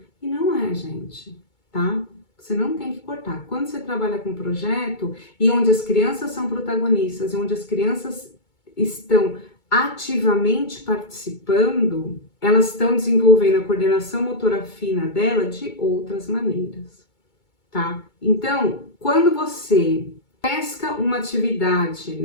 E não é, gente, tá? Você não tem que cortar. Quando você trabalha com projeto e onde as crianças são protagonistas e onde as crianças estão ativamente participando, elas estão desenvolvendo a coordenação motora fina dela de outras maneiras, tá? Então, quando você pesca uma atividade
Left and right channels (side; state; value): right; late; 2.2 ms